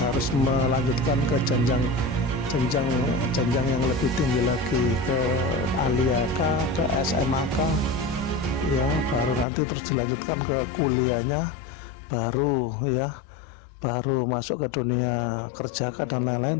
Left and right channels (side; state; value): right; drops out; at 9.5 s